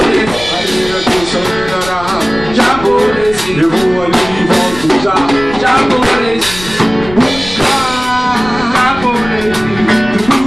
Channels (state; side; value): noise; left; rumble, 14 dB below the sound